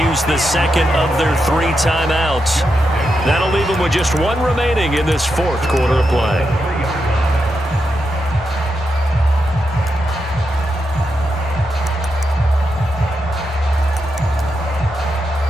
use the second of their 3 timeouts. That'll leave them with just 1 remaining in this 4th quarter of play.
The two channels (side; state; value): both; normal; correlation 0.85